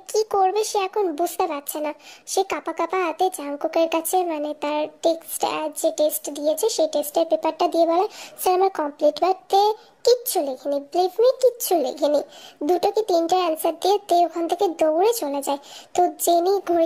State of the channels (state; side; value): identical; both; correlation 1.00